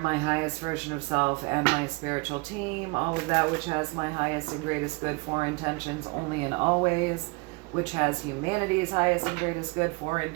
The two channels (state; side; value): quieter; left; 28.8 dB